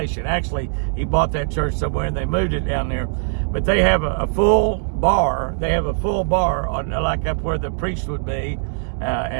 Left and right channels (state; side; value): silent; left; digital silence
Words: Actually, he bought that church somewhere and they moved it down there. But they have a full bar. They have a full bar on, like up where the priest would be,